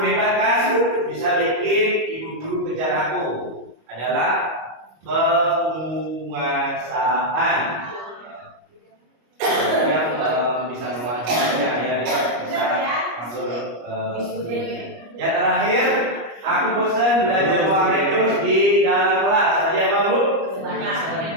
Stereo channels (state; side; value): late; left; 25 ms